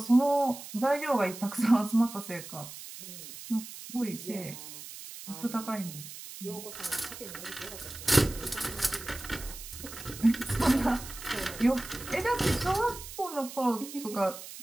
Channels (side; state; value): right; noise; hiss, 12 dB below the sound